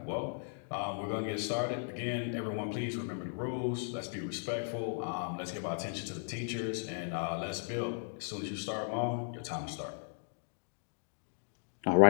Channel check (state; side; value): silent; right; digital silence